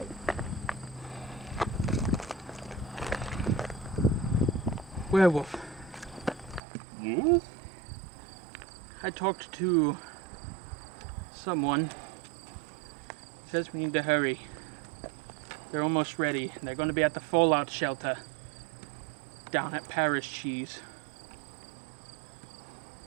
Werewolf. Yes? I talked to someone. Says we need to hurry. They're almost ready. They're going to be at the fallout shelter down at Paris Cheese.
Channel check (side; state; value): left; drops out; at 6.6 s